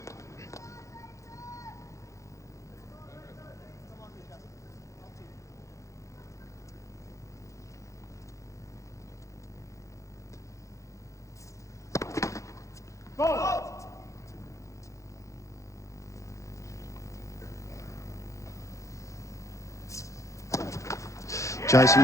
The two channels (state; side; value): late; right; 0.15 ms